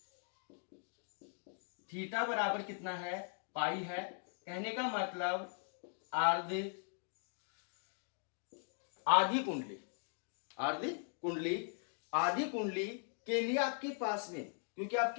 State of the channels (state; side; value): silent; right; 51 dB below the other